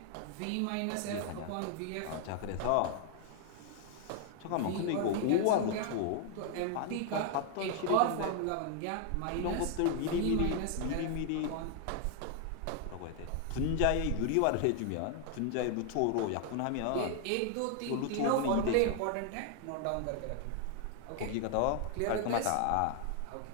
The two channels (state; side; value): different; both; correlation 0.00